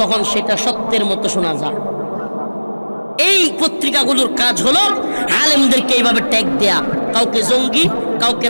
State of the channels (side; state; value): both; inverted; correlation -1.00